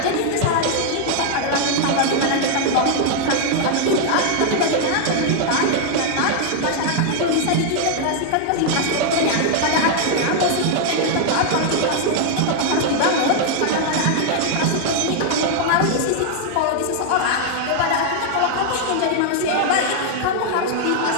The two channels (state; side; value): different; both; correlation 0.00